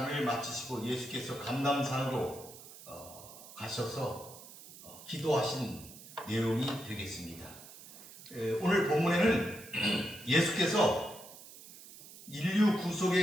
마치시고 예수께서 감람산으로 가셔서 기도하신 내용이 되겠습니다. 오늘 본문에는 예수께서 인류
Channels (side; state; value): right; noise; hiss, 17 dB below the sound